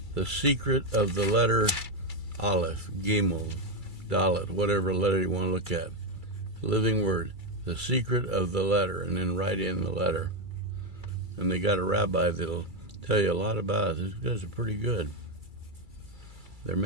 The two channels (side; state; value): left; late; 2.3 ms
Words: secret of the letter Aleph, Gimel, Dalet, whatever letter you want to look at. Living Word, the secret of the letter, and then write in the letter. And they got a rabbi that'll tell you a lot about it. These guys are pretty good. They're